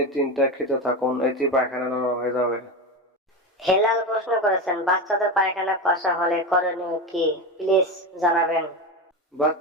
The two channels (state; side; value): normal; both; correlation 0.19